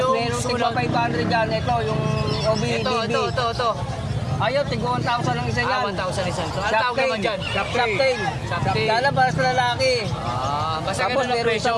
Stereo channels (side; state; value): both; identical; correlation 1.00